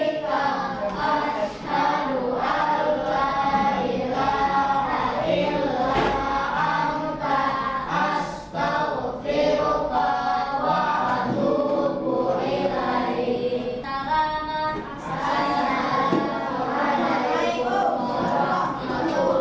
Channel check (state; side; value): identical; both; correlation 1.00